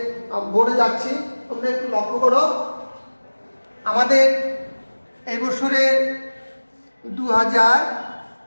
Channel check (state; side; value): inverted; both; correlation -1.00